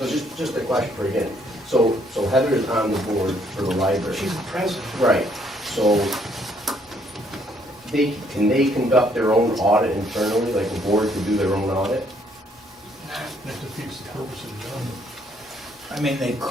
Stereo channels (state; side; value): normal; both; correlation 0.67